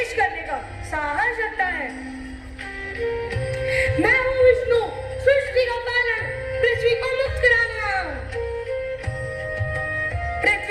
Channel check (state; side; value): identical; both; correlation 1.00